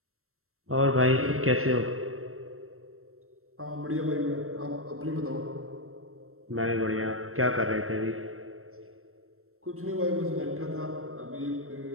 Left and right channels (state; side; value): late; left; 0.63 ms